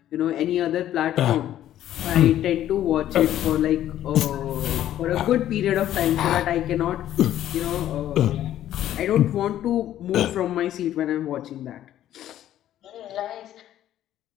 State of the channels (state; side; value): quieter; right; 12.2 dB